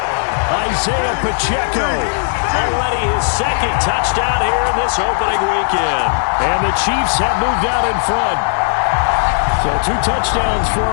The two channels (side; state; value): right; silent; digital silence